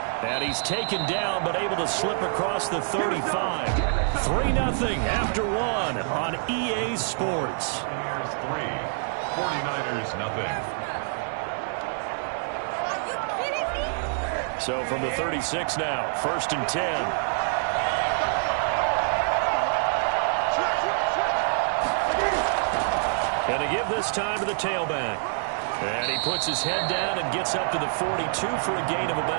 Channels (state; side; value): silent; left; digital silence